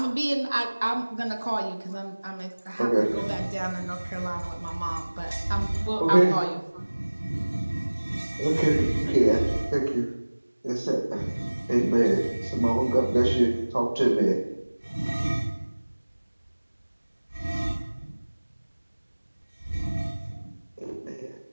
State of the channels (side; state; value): both; inverted; correlation -1.00